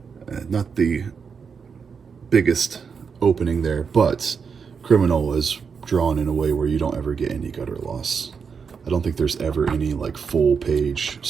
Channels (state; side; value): quieter; left; 6.0 dB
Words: Not the biggest opening there, but Criminal is drawn in a way where you don't ever get any gutter loss. I don't think there's ever any like full page